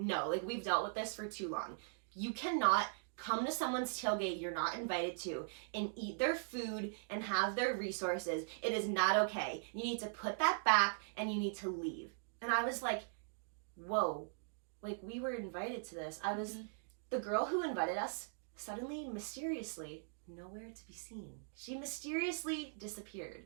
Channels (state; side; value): silent; left; digital silence